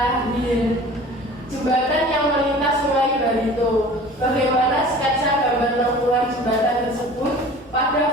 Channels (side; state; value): both; normal; correlation 0.43